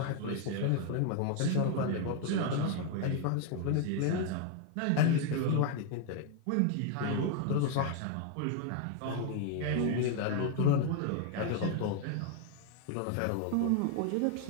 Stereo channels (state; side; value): different; both; correlation 0.01